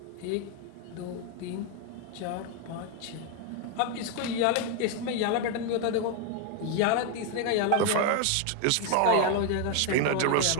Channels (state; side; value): different; both; correlation 0.01